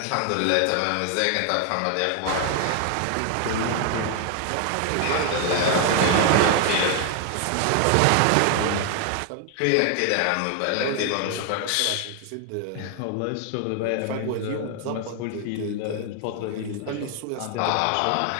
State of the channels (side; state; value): both; different; correlation 0.00